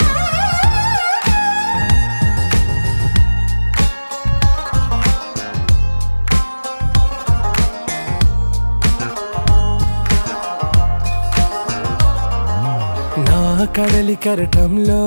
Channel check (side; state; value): both; inverted; correlation -1.00